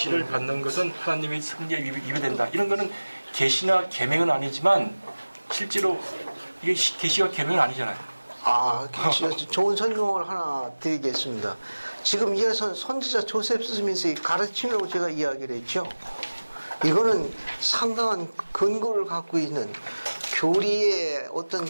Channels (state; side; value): inverted; both; correlation -1.00